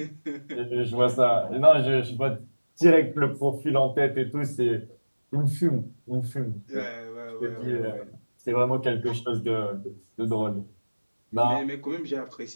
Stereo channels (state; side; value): inverted; both; correlation -1.00